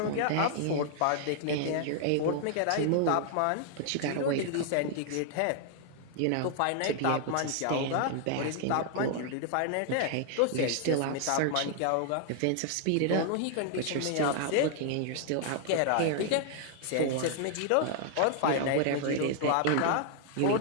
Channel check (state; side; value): different; both; correlation 0.00